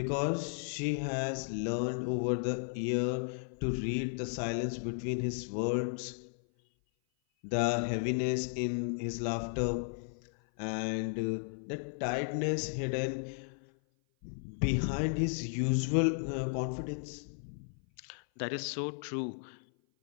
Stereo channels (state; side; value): silent; right; 55 dB below the other